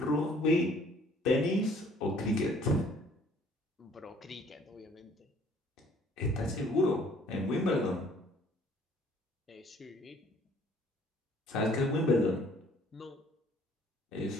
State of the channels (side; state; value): both; normal; correlation 0.58